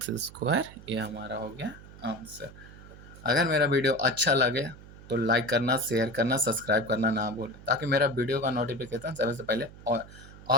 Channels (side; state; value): right; noise; hum, 18 dB below the sound